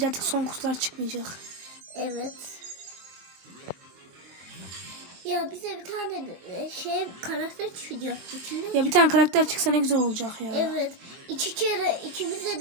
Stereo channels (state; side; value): late; left; 23 ms